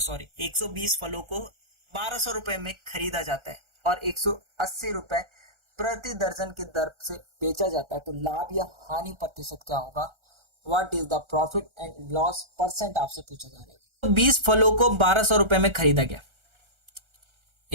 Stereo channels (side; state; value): left; late; 1.4 ms